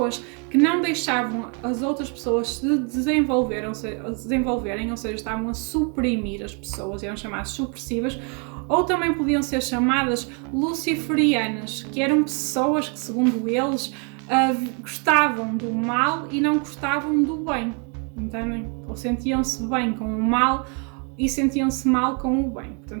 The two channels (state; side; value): quieter; left; 35.8 dB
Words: que não deixavam as outras pessoas se desenvolverem, ou seja, estavam a suprimir as pessoas, eram chamadas supressivas. Ou também podiam ser chamadas luciferianas, que eram pessoas que, segundo eles, gostavam do mal e não gostavam do bem, entendem? Ou sentiam-se bem com o mal e sentiam-se mal com o bem.